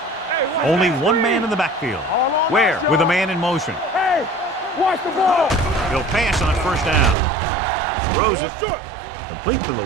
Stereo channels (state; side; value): drops out; left; at 7.2 s